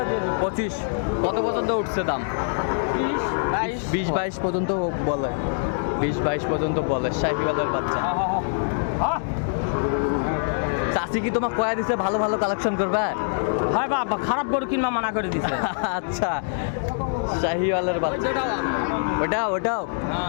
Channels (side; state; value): right; silent; digital silence